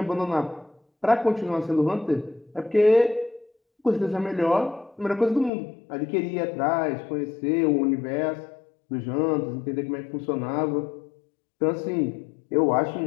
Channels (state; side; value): drops out; right; at 5.5 s